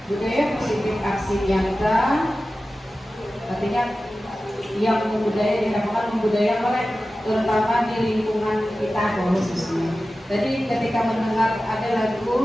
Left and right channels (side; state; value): both; normal; correlation 0.95